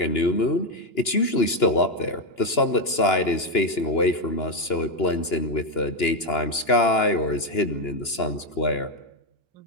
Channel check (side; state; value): right; late; 2.9 ms